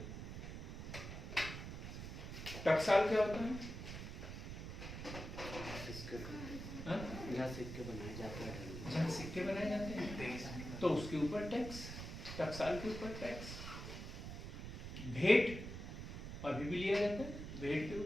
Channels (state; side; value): noise; right; rumble, 8 dB below the sound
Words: टकसाल क्या होता है? हाँ? जहाँ सिक्के बनाए जाते हैं, जहाँ सिक्के बनाए जाते हैं तो उसके ऊपर टैक्स, टकसाल के ऊपर टैक्स। भेंट अभी भी लिया जाता है, भेंट के